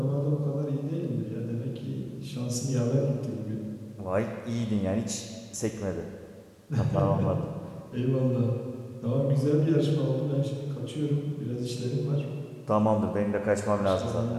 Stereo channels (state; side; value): identical; both; correlation 1.00